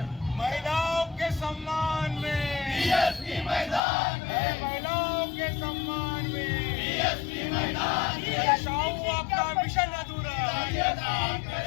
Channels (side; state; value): right; drops out; at 3.8 s